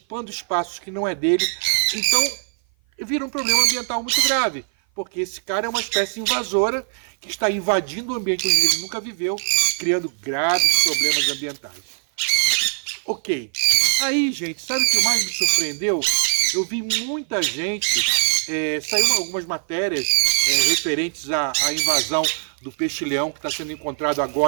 espaços que não é dele, então vira um problema ambiental muito grave, porque esse cara é uma espécie invasora que está invadindo o ambiente onde ele nunca viveu, criando graves problemas ambientais. Ok. Aí, gente, sabe o que mais me surpreendeu? Eu vi muita gente, saiu algumas matérias referentes à invasão do peixe-leão que está sendo encontrado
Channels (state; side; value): silent; left; 56 dB below the other